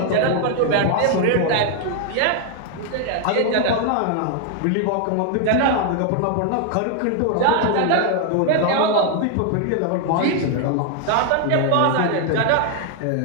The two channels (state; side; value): different; both; correlation 0.00